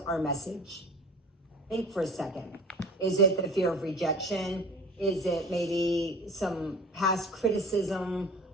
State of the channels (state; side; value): normal; both; correlation 0.41